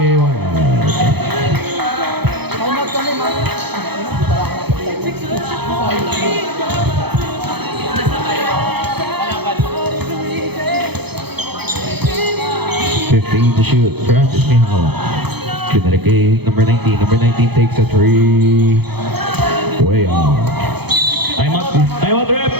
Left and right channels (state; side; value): late; left; 0.98 ms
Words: $15 to shoot. Francis may hawak. Pinalik kay number 19. Number 19 takes a 3. Way off. Timeout, rep!